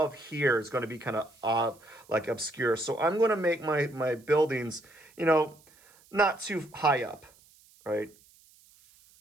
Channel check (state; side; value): noise; right; hiss, 28 dB below the sound